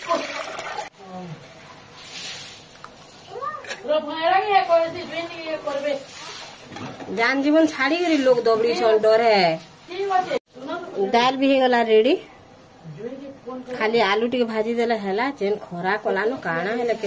जान जीवन छाड़ी करी लोग दबड़ी छन डर है दाल भी गला रेडी खाली आलू टिके भाजी देला हैला जेन खरा कला न काना हैला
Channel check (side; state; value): both; identical; correlation 1.00